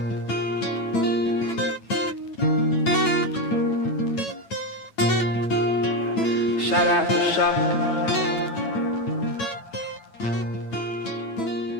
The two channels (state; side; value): late; right; 9.0 ms